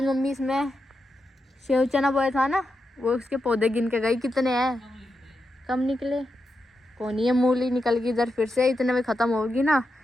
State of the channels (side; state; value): both; normal; correlation 0.87